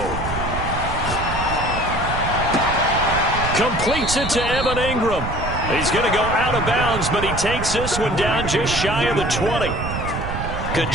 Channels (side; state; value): right; noise; rumble, 5 dB below the sound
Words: Completes it to Evan Ingram. He's going to go out of bounds, but he takes this one down just shy of the 20. Good